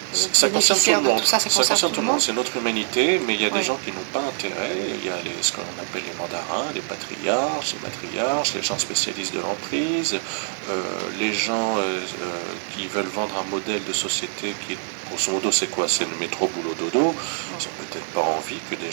ça concerne tout le monde. Tout ça, ça concerne tout le monde. C'est notre humanité, mais il y a des gens qui n'ont pas intérêt. Il y a ce qu'on appelle les mandarins, les patriarches, les matriarches, les gens spécialistes de l'emprise, les gens qui veulent vendre un modèle de société qui, grosso modo, c'est quoi? C'est le métro, boulot, dodo. Ils n'ont peut-être pas envie que des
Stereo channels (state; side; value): silent; left; 62 dB below the other